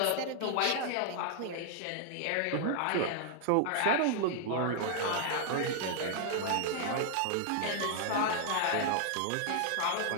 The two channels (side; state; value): both; different; correlation 0.00